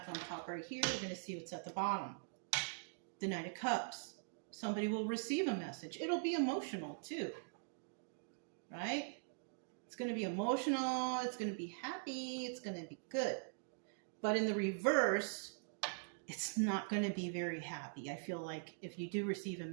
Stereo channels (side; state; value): left; silent; digital silence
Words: on top right here. We're going to see what's at the bottom. The Knight of Cups. Somebody will receive a message. It'll be emotional too, right? It's going to be emotional. It's going to be happy. It's going to be good. But in the reverse, it's not going to be very happy. I feel like if you do receive a